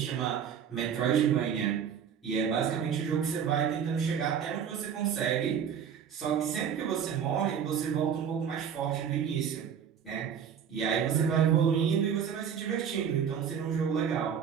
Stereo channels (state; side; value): quieter; left; 7.9 dB